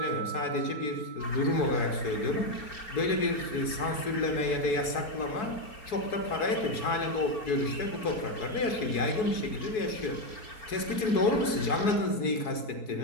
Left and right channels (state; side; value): late; right; 4.7 ms